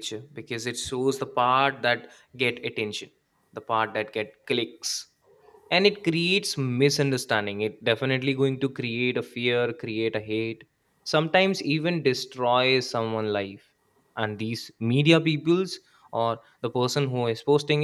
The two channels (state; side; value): identical; both; correlation 1.00